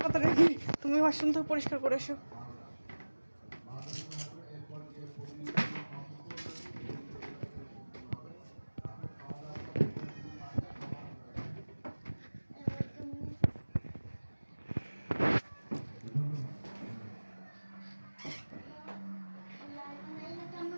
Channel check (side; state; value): both; inverted; correlation -1.00